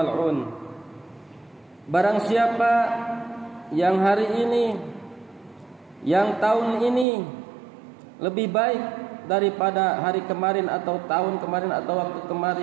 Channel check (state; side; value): drops out; left; at 7.1 s